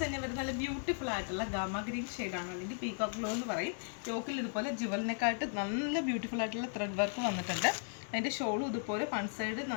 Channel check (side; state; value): right; silent; digital silence